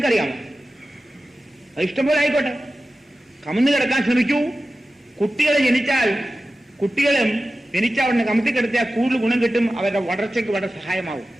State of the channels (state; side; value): normal; both; correlation 0.94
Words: അറിയാമോ? അത് ഇഷ്ടംപോലെ ആയിക്കോട്ടെ. കമന്ന് കിടക്കാൻ ശ്രമിക്കൂ. കുട്ടികളെ കുട്ടികളും ജനിച്ച ഉടനെ കമത്തി കിടത്തിയാൽ കൂടുതൽ ഗുണം കിട്ടും. അവരുടെ വളർച്ചയ്ക്ക് വളരെ സഹായമാവും.